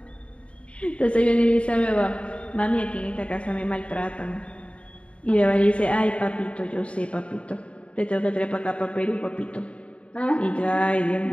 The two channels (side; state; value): right; late; 0.061 ms